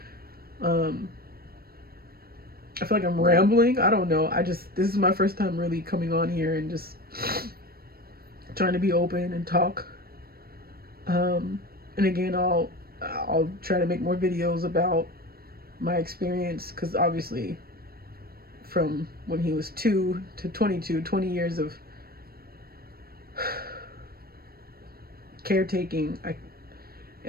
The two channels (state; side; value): late; left; 0.44 ms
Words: I feel like I'm rambling. I don't know. This is my first time really coming on here and just trying to be open and talk. And again, I'll try to make more videos about my experience, because obviously from when he was 2 to 22, 20 years of caretaking,